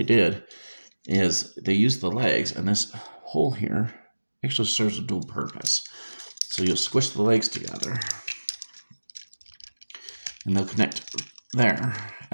did is they used the legs, and this hole here actually serves a dual purpose. So you'll squish the legs together and they'll connect There.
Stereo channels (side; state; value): both; inverted; correlation -1.00